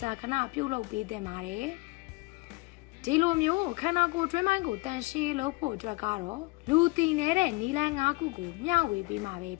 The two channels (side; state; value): right; quieter; 25.1 dB